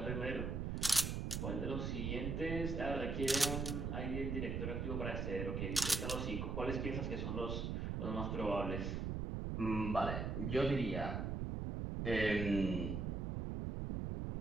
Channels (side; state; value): right; noise; rumble, 1 dB below the sound